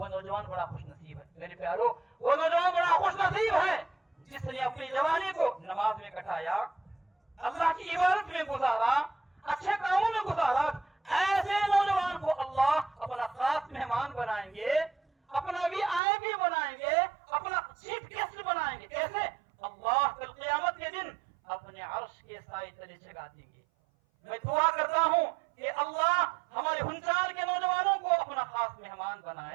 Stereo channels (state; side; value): drops out; left; at 16.0 s